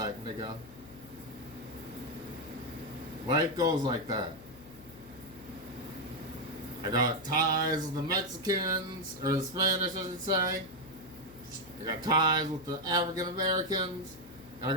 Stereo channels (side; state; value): left; noise; hum, 19 dB below the sound